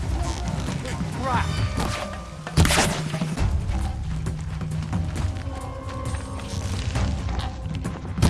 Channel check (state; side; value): identical; both; correlation 1.00